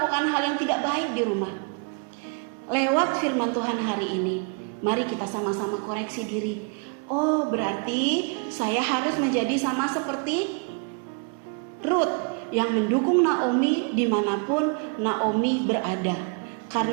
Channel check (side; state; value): left; quieter; 38.1 dB